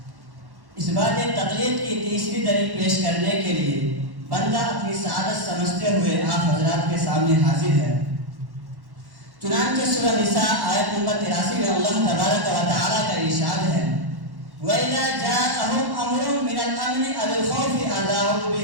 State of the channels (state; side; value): late; left; 1.1 ms